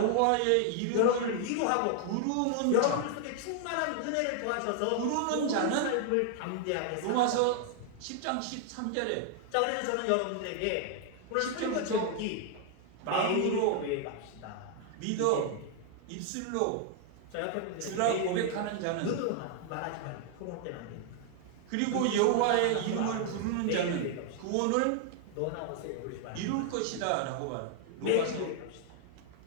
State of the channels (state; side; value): different; both; correlation 0.00